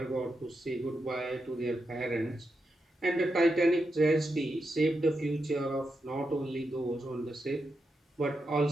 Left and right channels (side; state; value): both; normal; correlation 0.86